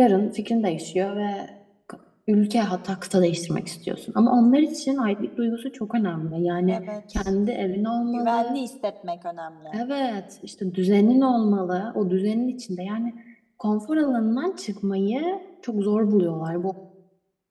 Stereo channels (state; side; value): identical; both; correlation 1.00